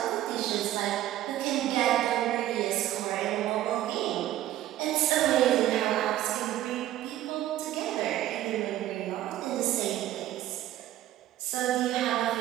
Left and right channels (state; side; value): quieter; left; 13.6 dB